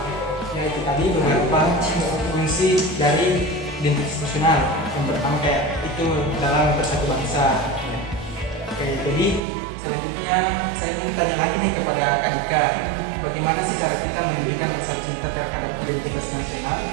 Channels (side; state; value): left; drops out; at 9.4 s